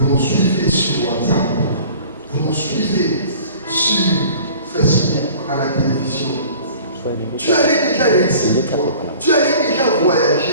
nous suivez sur WhatsApp, vous nous suivez sur Facebook, à la télévision. Tu allais déjà réussir. Tu allais déjà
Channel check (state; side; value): inverted; both; correlation -0.46